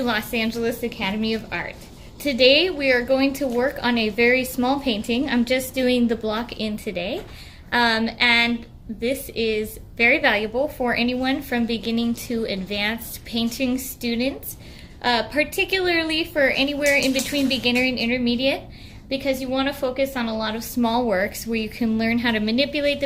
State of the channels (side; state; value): both; identical; correlation 1.00